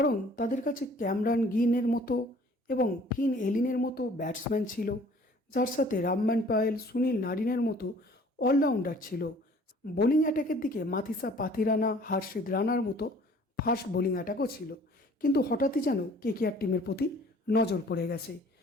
তাদের কাছে ক্যামরান গিনের মতো এবং ফিন এলিনের মতো ব্যাটসম্যান ছিল, যার সাথে রামমান পায়েল, সুনীল নারিনের মতো অলরাউন্ডার ছিল। বোলিং অ্যাটাকের দিকে মাথিসা পাথিরানা, হার্ষিদ রানার মতো ফাস্ট বোলিং অ্যাটাকও ছিল। কিন্তু হঠাৎই যেন কেকেআর টিমের প্রতি নজর পড়ে গেছে।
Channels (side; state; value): both; normal; correlation 0.53